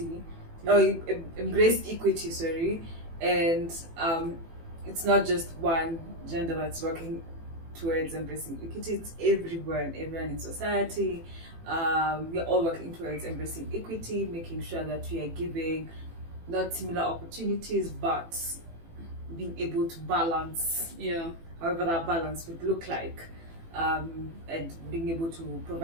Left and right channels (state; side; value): late; left; 18 ms